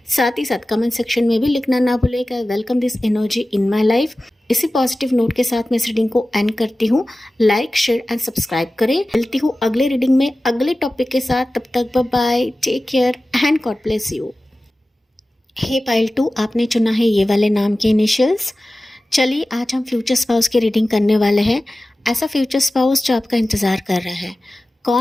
साथ ही साथ कमेंट सेक्शन में भी लिखना ना भूलेगा, welcome this energy in my life. इसी पॉजिटिव नोट के साथ मैं इस रीडिंग को एंड करती हूँ। लाइक, शेयर एंड सब्सक्राइब करें। मिलती हूँ अगले रीडिंग में अगले टॉपिक के साथ, तब तक bye bye, take care and God bless you. Hey pile 2, आपने चुना है ये वाले नाम के इनिशियल्स। चलिए आज हम फ्यूचर स्पाउस की रीडिंग करने वाले हैं। ऐसा फ्यूचर स्पाउस जो आपका इंतज़ार कर रहा है,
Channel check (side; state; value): both; normal; correlation 0.96